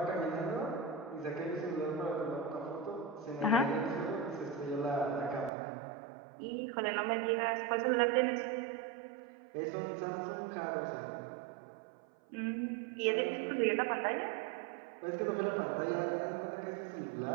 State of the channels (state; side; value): drops out; left; at 5.5 s